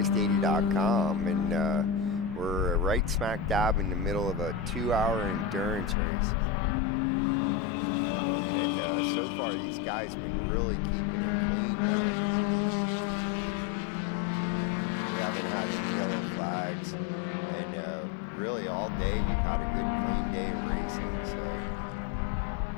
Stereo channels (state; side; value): drops out; right; at 6.0 s